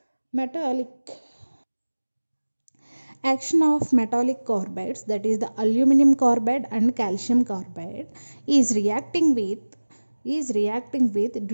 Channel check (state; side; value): inverted; both; correlation -1.00